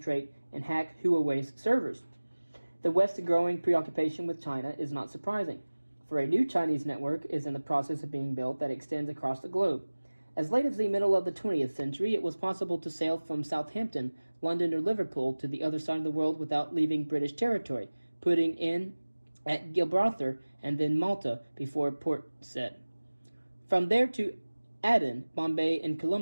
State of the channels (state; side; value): inverted; both; correlation -1.00